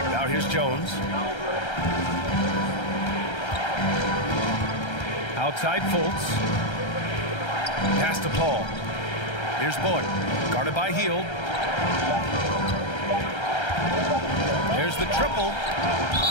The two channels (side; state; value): right; late; 1.3 ms